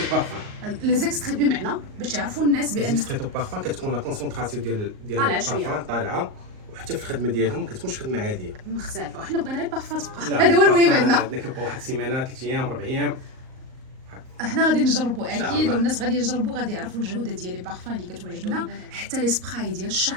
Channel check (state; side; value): late; left; 38 ms